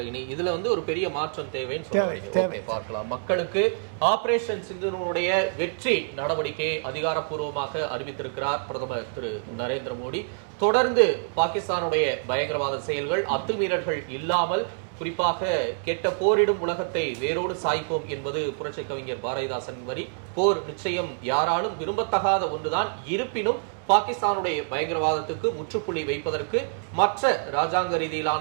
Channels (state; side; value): silent; left; digital silence